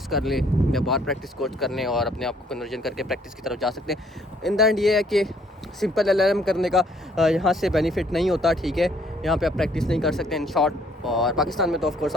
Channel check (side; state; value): both; normal; correlation 0.63